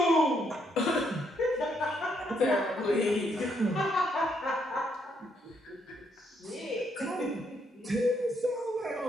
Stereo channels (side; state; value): both; normal; correlation 0.74